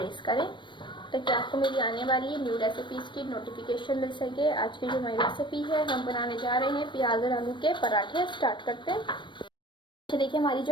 करें ताकि आपको मेरी आने वाली न्यू रेसिपीज़ की नोटिफिकेशन मिल सके। आज की जो हमारी रेसिपी है, हम बनाने जा रहे हैं प्याज और आलू के पराठे। स्टार्ट करते हैं। तो देखिए, हमारी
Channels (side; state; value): right; late; 0.23 ms